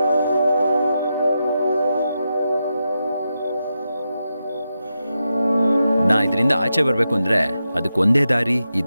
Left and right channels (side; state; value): both; inverted; correlation -0.88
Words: ನಾ ಇದರಿಂದ ಆಚೆ ಬರ್ಬೇಕು ಅಂದ್ರೆ ಅದಕ್ಕೊಂದೇ ದಾರಿ